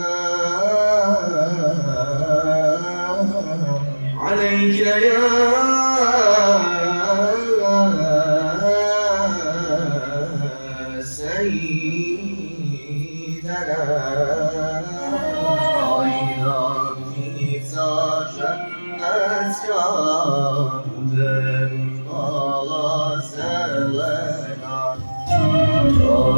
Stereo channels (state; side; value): inverted; both; correlation -1.00